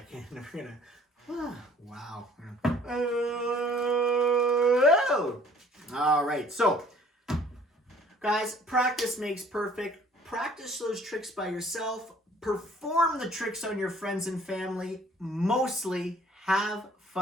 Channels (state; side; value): normal; both; correlation 0.55